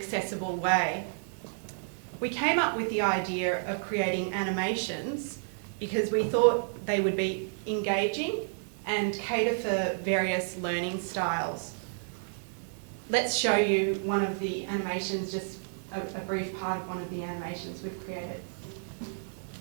way. We came up with the idea of creating animations because we thought they would be engaging and cater for various learning styles. Let's show you one of the animations, just a brief part of one of the animations we've created.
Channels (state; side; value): silent; left; 57 dB below the other